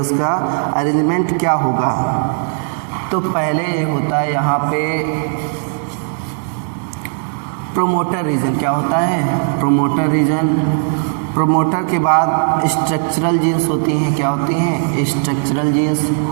का अरेंजमेंट क्या होगा। तो पहले होता है यहाँ पे प्रोमोटर रीजन। क्या होता है? Promoter region. प्रोमोटर के बाद स्ट्रक्चरल जीन्स होती हैं। क्या होती हैं? Structural genes.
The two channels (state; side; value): silent; left; 68 dB below the other